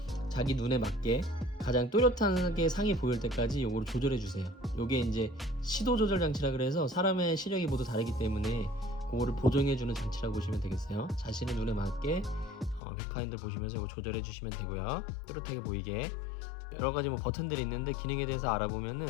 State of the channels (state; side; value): drops out; right; at 12.8 s